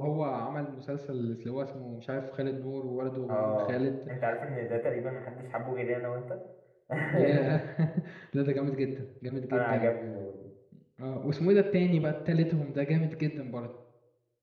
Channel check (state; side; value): identical; both; correlation 1.00